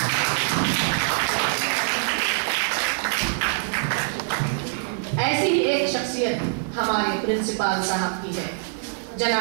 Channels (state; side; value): silent; left; 63 dB below the other